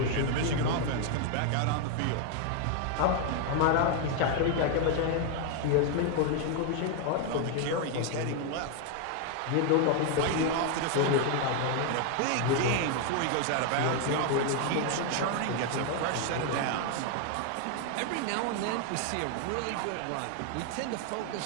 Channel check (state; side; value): different; both; correlation 0.01